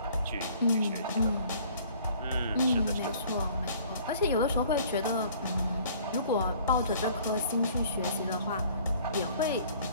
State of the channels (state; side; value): inverted; both; correlation -0.54